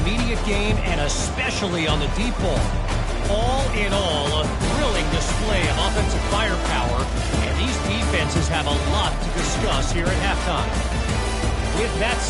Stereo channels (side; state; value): both; identical; correlation 1.00